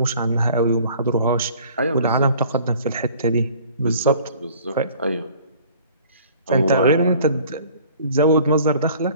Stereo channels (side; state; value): both; inverted; correlation -0.52